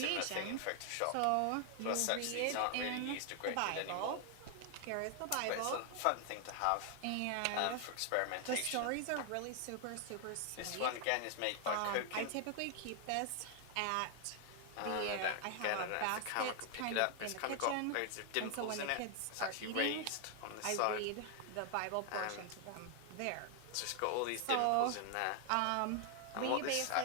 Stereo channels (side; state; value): both; different; correlation 0.00